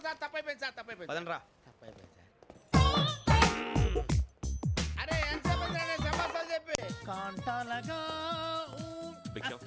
సార్ తప్పైపోయింది సార్, తప్పైపోయింది. పదండ్రా. తప్పైపోయింది సార్. అరే ఎంతసేపు సమాసాలు చెప్పి కాంటాలగా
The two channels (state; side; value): identical; both; correlation 1.00